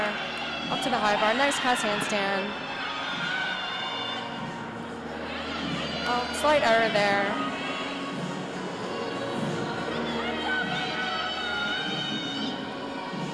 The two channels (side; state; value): both; identical; correlation 1.00